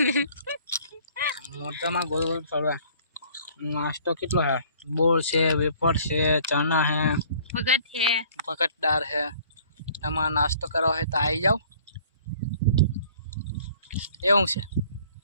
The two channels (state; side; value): inverted; both; correlation -0.55